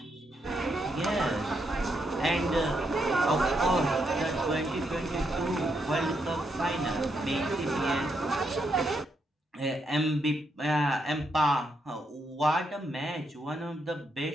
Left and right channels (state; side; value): normal; both; correlation 0.79